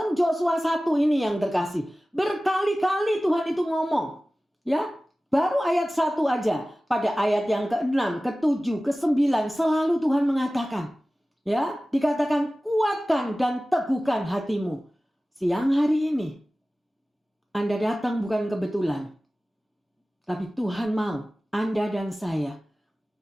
Joshua 1 ini yang terkasih, berkali-kali Tuhan itu ngomong. Ya, baru ayat 1 aja. Pada ayat yang ke-6, ke-7, ke-9 selalu Tuhan mengatakan, ya, dikatakan kuatkan dan teguhkan hatimu. Siang hari ini Anda datang bukan kebetulan. Tapi Tuhan mau Anda dan saya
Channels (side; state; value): both; normal; correlation 0.97